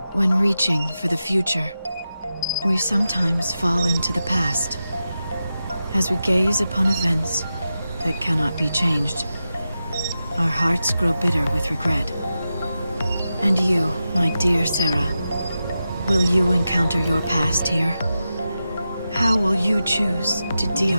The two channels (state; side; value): inverted; both; correlation -0.91